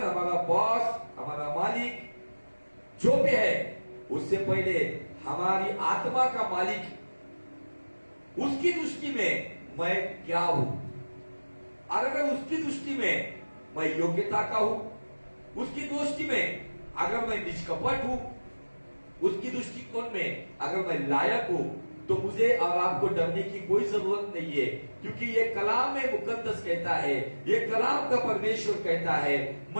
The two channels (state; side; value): inverted; both; correlation -1.00